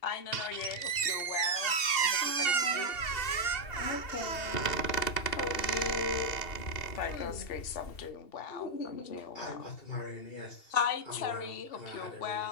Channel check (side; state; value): right; late; 2.7 ms